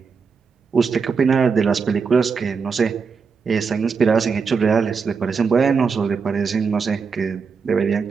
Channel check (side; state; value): left; quieter; 5.5 dB